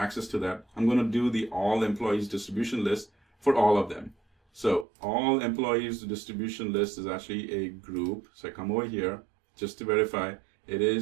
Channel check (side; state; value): left; drops out; at 4.9 s